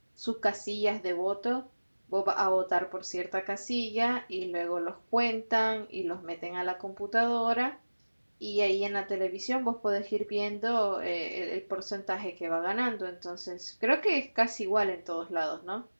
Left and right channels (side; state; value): both; inverted; correlation -1.00